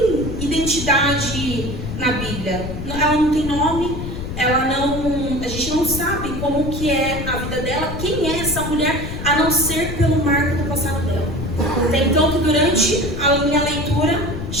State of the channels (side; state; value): left; noise; rumble, 6 dB below the sound